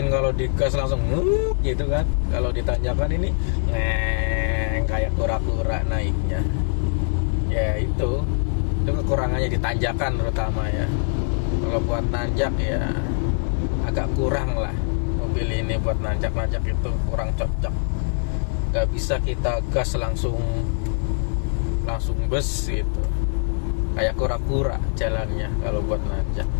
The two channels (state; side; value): silent; right; digital silence